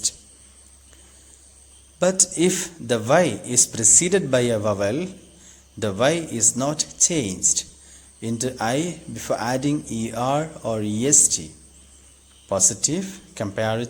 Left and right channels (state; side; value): identical; both; correlation 1.00